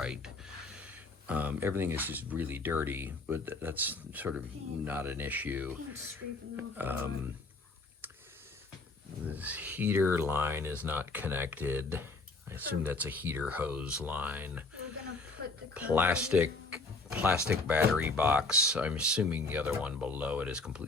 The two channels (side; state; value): right; quieter; 3.4 dB